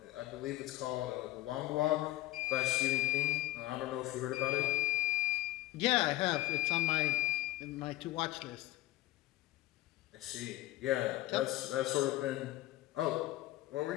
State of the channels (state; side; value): quieter; right; 16.6 dB